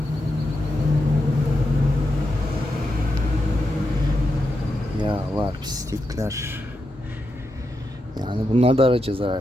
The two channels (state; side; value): normal; both; correlation 0.86